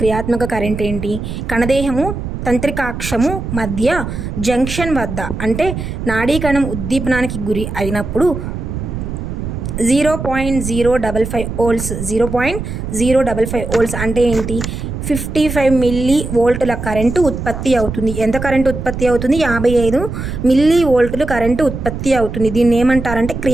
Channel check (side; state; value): right; noise; rumble, 6 dB below the sound